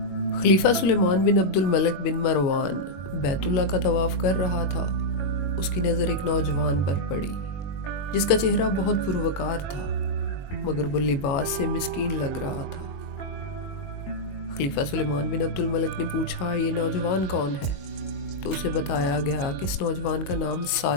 خلیفہ سلیمان بن عبد الملک بن مروان بیت اللہ کا طواف کر رہا تھا۔ اس کی نظر ایک نوجوان پر پڑی جس کا چہرہ بہت پروقار تھا، مگر وہ لباس سے مسکین لگ رہا تھا۔ خلیفہ سلیمان بن عبد الملک نے پوچھا، یہ نوجوان کون ہے؟ تو اسے بتایا گیا کہ اس نوجوان کا نام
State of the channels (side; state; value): right; late; 22 ms